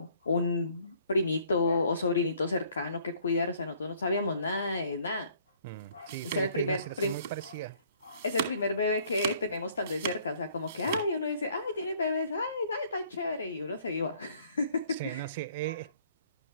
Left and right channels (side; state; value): both; inverted; correlation -0.60